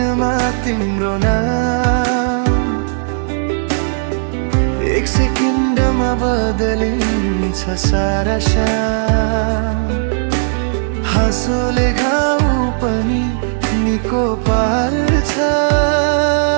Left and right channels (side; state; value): left; silent; digital silence